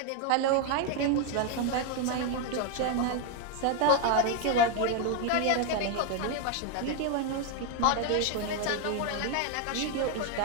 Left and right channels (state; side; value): different; both; correlation 0.01